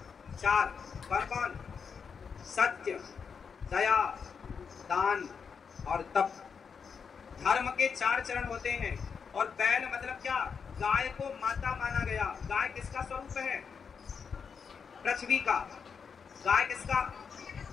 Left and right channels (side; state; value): right; quieter; 6.1 dB